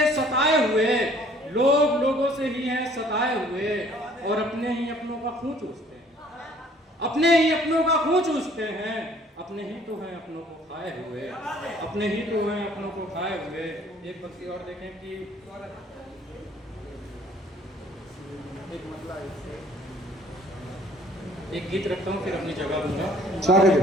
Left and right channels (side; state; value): both; normal; correlation 0.57